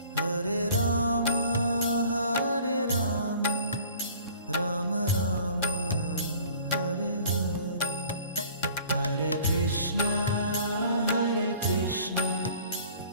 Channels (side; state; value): both; inverted; correlation -0.50